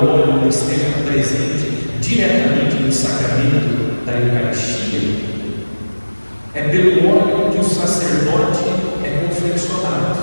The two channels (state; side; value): inverted; both; correlation -1.00